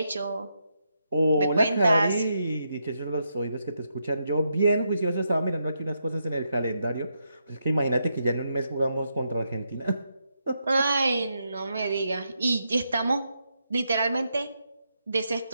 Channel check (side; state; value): both; inverted; correlation -0.82